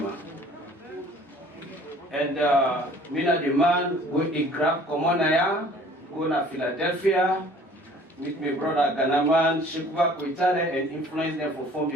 And Mina the man go in grab Komonaya, go to Philadelphia, meet my brother Ganaman, Shekuba Koitale, and influence them to form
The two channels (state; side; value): normal; both; correlation 0.52